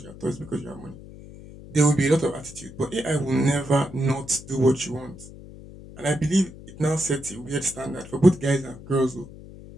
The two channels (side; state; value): left; noise; hum, 17 dB below the sound